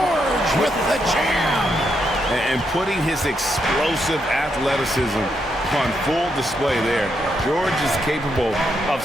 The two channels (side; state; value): both; normal; correlation 0.80